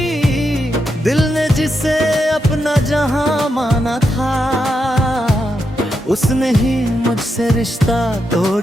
दिल ने जिसे अपना जहां माना था, उसने ही मुझसे रिश्ता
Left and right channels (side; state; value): both; normal; correlation 0.84